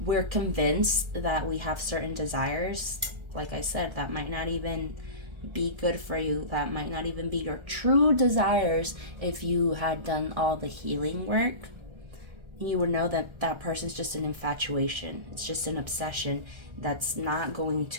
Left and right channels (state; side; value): late; left; 1.3 ms